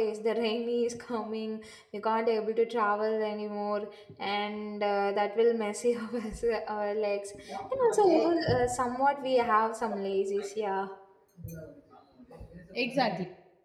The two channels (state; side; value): identical; both; correlation 1.00